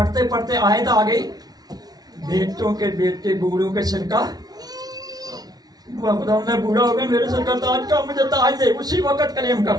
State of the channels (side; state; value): left; late; 0.19 ms